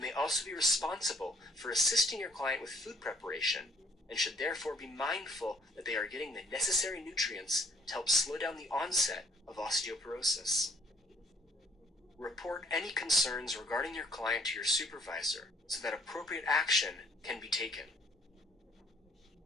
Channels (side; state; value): both; normal; correlation 0.63